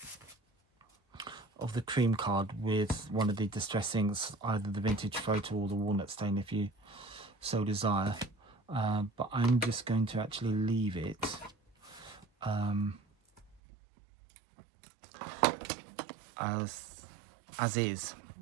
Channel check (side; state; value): left; drops out; at 13.6 s